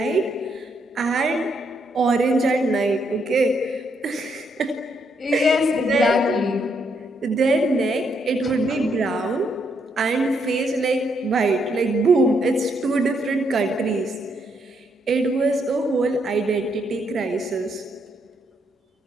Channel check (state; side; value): normal; both; correlation 0.76